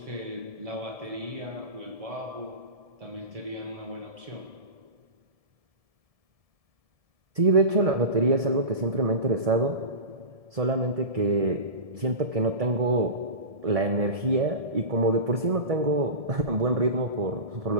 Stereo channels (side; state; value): left; late; 1.7 ms